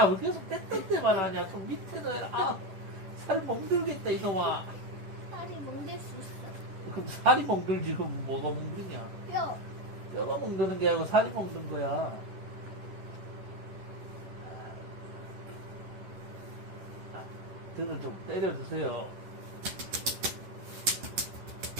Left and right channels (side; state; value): left; late; 10 ms